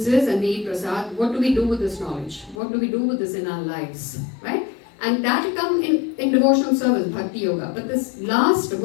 and we eat prasad. What do we do with this knowledge? What do we do with this in our lives, right? And that will come in devotional service, Bhakti Yoga. But this last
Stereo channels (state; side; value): drops out; right; at 2.6 s